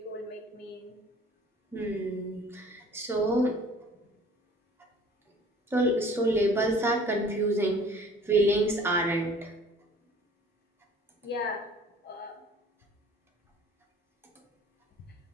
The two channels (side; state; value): both; normal; correlation 0.50